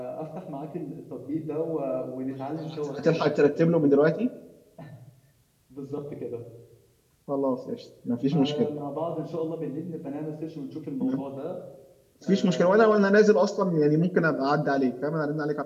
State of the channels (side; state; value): both; identical; correlation 1.00